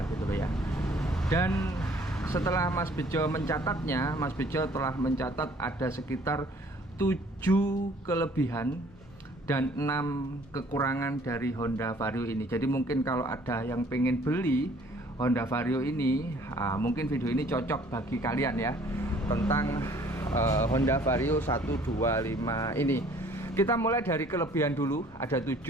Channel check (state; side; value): normal; both; correlation 0.56